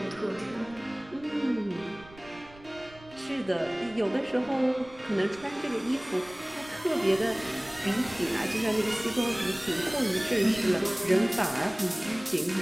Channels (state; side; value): noise; right; rumble, 23 dB below the sound